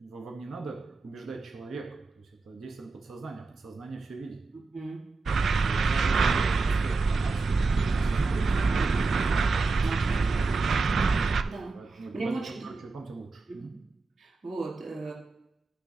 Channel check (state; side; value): quieter; left; 3.9 dB